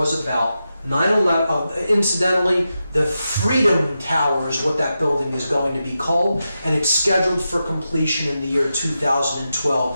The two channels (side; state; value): both; inverted; correlation -0.89